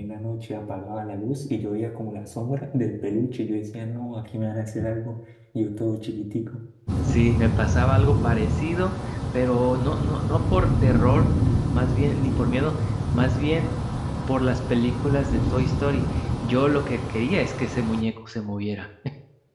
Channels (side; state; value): both; identical; correlation 1.00